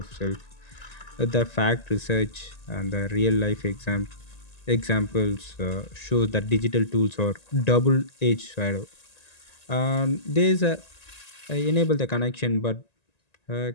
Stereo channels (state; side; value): late; right; 1.9 ms